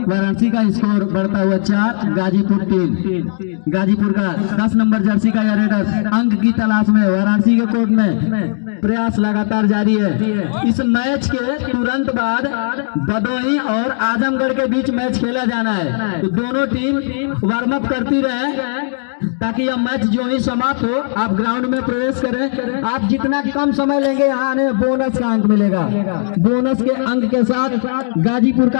वाराणसी का स्कोर बढ़ता हुआ 4, गाजीपुर 3। गाजीपुर का 10 नंबर जर्सी का यह रेडर अंक की तलाश में वाराणसी के कोर्ट में प्रयास लगातार जारी है। इस मैच के तुरंत बाद भदोही और आजमगढ़ के बीच मैच खेला जाना है। तो दोनों टीम वार्म अप करती रहे ताकि यह मैच जो ही समाप्त हो आप ग्राउंड में प्रवेश करें। आप जितना कम समय लेंगे यहाँ आने बोनस का अंक मिलेगा। बोनस के अंक के साथ गाजीपुर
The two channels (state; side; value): silent; right; digital silence